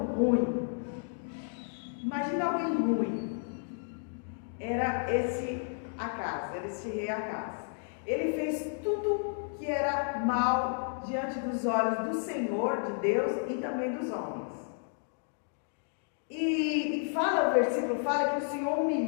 ruim. Imagina alguém ruim. Era esse Acaz, era esse rei Acaz. Ele fez tudo que era mal diante dos olhos do Senhor, de Deus e também dos homens. E fala, o versículo fala que o Senhor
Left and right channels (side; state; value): right; silent; 56 dB below the other